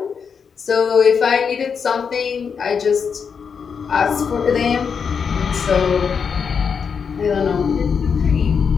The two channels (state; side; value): quieter; right; 6.3 dB